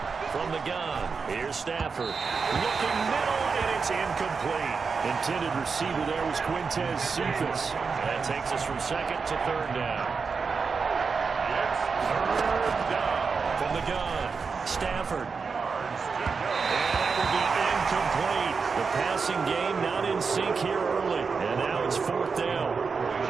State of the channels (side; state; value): left; quieter; 5.1 dB